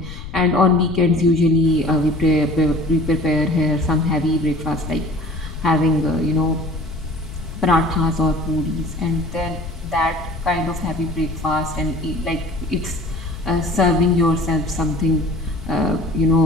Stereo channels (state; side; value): noise; left; rumble, 10 dB below the sound